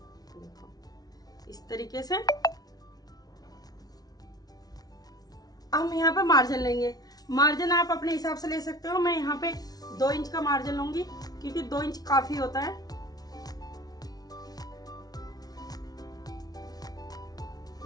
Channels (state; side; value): late; right; 0.19 ms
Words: इस तरीके से। हम यहाँ पे मार्जिन लेंगे, मार्जिन आप अपने हिसाब से ले सकते हो। मैं यहाँ पे 2 इंच का मार्जिन लूंगी, क्योंकि 2 इंच काफी होता है।